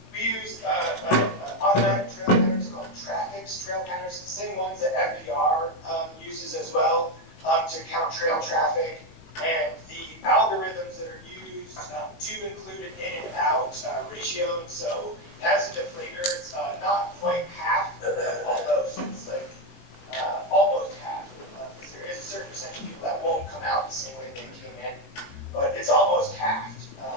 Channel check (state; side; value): late; right; 19 ms